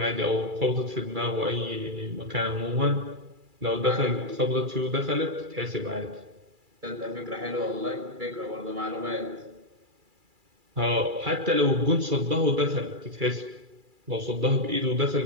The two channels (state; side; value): late; left; 2.3 ms